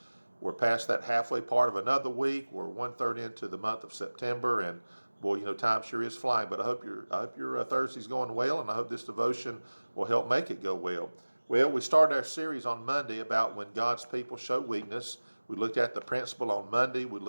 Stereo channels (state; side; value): inverted; both; correlation -1.00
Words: We're past that halfway part of another week. We're one-third into the month of September, and boy, time sure is flying. But I hope your Thursday's going well, and I hope this devotion will help make it go well. Well, we started our series on Monday about when God's people show weakness. We looked at the principle on Monday. We've